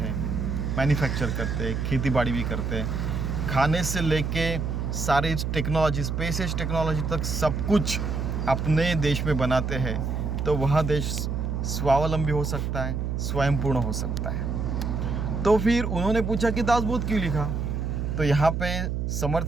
मैन्युफैक्चर करते हैं, खेती बाड़ी भी करते हैं, खाने से लेके सारी टेक्नोलॉजी, स्पेस टेक्नोलॉजी तक सब कुछ अपने देश में बनाते हैं, तो वह देश स्वावलंबी हो सकता है, स्वयंपूर्ण हो सकता है। तो फिर उन्होंने पूछा कि दासबोध क्यों लिखा? तो यहाँ पे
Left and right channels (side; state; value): right; noise; hum, 1 dB below the sound